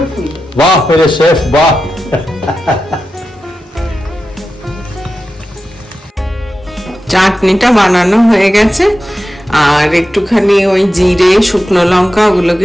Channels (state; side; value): normal; both; correlation 0.91